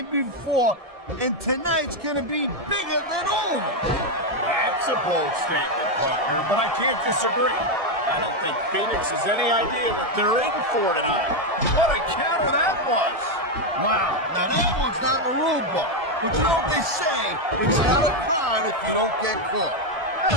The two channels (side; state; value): left; late; 1.7 ms